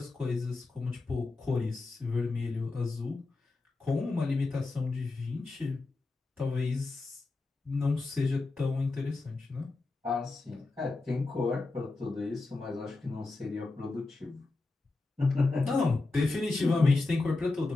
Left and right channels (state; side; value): quieter; right; 3.5 dB